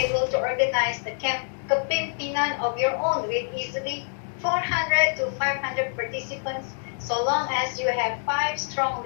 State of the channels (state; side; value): silent; right; digital silence